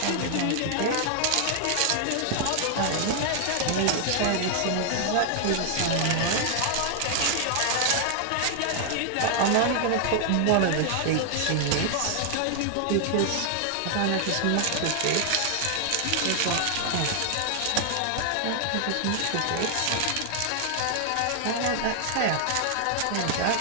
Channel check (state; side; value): different; both; correlation 0.00